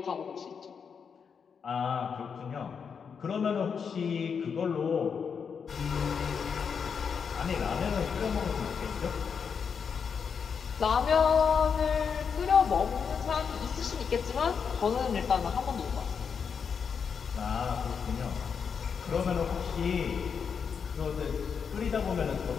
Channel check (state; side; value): quieter; right; 6.4 dB